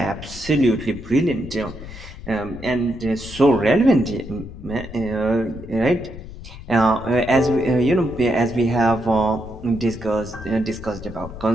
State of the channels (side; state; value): left; noise; rumble, 14 dB below the sound